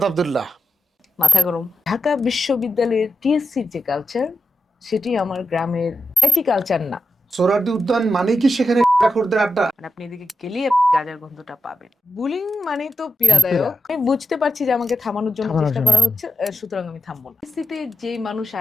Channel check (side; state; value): both; normal; correlation 0.90